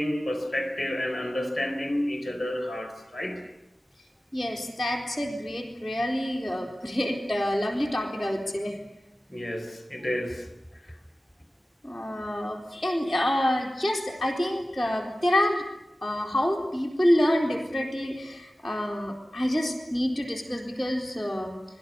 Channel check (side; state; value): both; normal; correlation 0.96